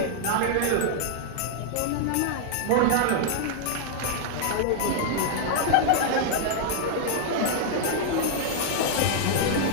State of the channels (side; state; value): both; different; correlation -0.01